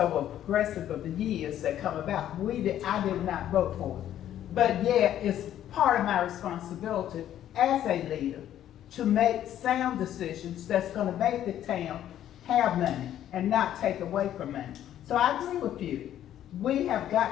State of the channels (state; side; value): quieter; right; 11.4 dB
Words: progressive of the years that come about. I did not vote for it. But yet, it's part of my responsibility as a leader to make sound decisions that's gonna make the town have money and not take away from money. So I agree with you. We have